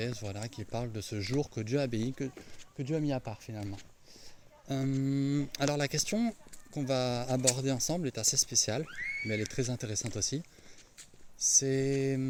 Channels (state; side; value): identical; both; correlation 1.00